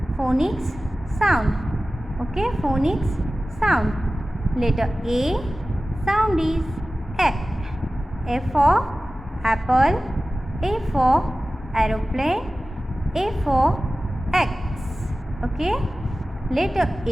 Phonics sound. Okay, phonics sound. Letter A sound is A. A for apple. A for aeroplane. A for X. Okay. Letter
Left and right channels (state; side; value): normal; both; correlation 0.96